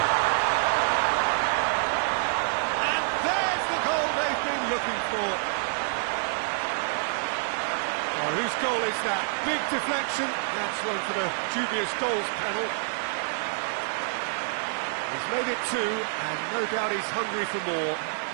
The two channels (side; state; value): left; silent; 56 dB below the other